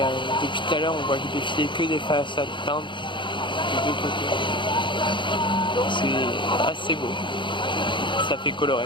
depuis tout à l'heure, on voit défiler que des façades peintes de deux côtés. C'est assez beau. Ça fait coloré.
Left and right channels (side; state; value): right; late; 0.23 ms